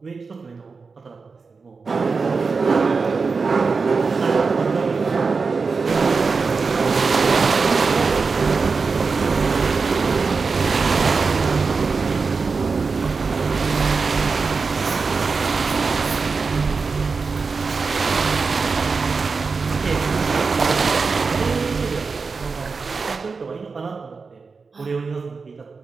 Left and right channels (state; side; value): quieter; left; 4.7 dB